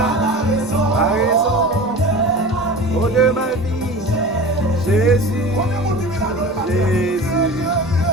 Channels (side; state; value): right; noise; rumble, 28 dB below the sound